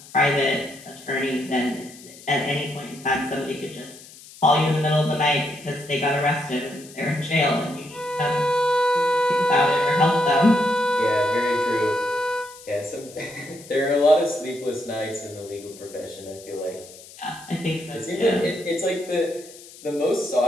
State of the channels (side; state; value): left; noise; hiss, 19 dB below the sound